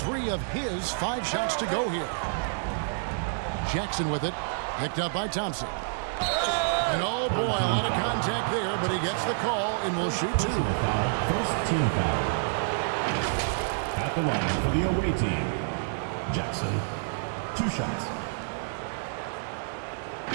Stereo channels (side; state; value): left; silent; 59 dB below the other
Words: of his 5 shots to go here. Jackson with it. Picked up by Thompson. And oh boy, a lot of contact there, but he gets the call and will shoot 2. First team foul. At the line for the away team, Jackson, 2 shots.